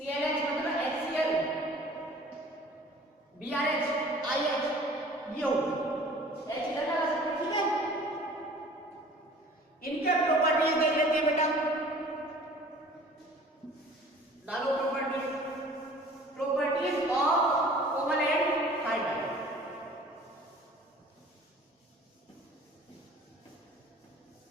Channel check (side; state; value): both; normal; correlation 0.48